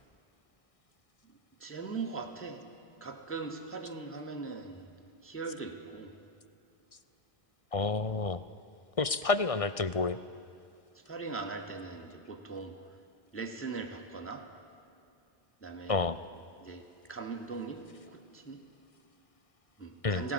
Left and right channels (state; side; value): late; right; 1.6 ms